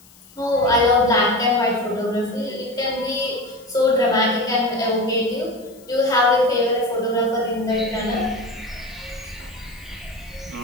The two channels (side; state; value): left; noise; hiss, 26 dB below the sound